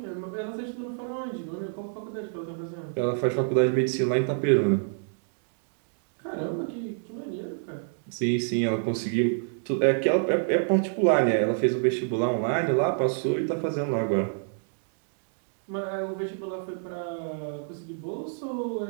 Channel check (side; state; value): left; silent; digital silence